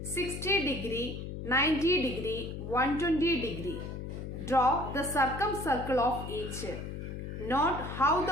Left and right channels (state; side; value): noise; left; hum, 7 dB below the sound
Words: 60 degree, 90 degree, 120 degree. Draw the circumcircle of each. Note how